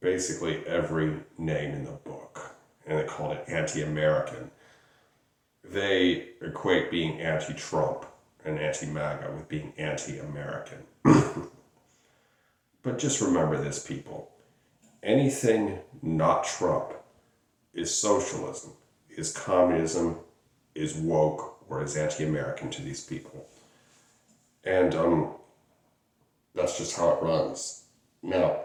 basically every name in the book. And they called it anti-American. They equate being anti-Trump and anti-MAGA with being anti-American. But just remember this, people. Anything not Trump is socialism, is communism, is woke, or is anti-American to these people. And that's just how it runs. Now,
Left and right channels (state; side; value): identical; both; correlation 1.00